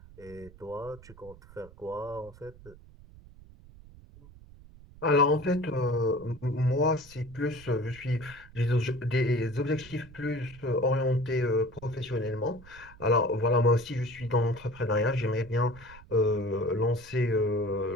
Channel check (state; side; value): noise; right; rumble, 21 dB below the sound